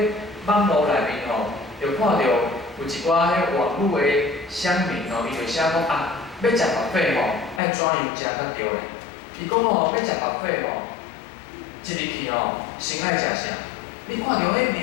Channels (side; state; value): right; drops out; at 7.6 s